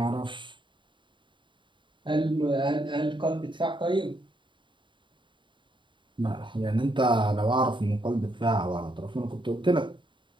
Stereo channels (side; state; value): left; late; 0.23 ms